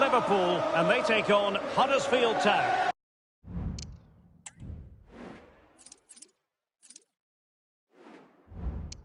and they take on Huddersfield Town.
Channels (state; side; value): identical; both; correlation 1.00